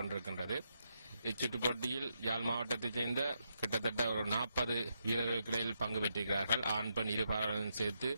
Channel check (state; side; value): inverted; both; correlation -0.81